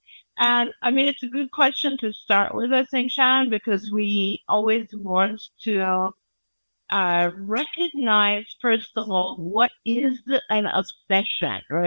And I mean, it's a good question to start with, I think, Shannon, because we always want to recognize, first of all, what is an obsession,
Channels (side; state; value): both; inverted; correlation -1.00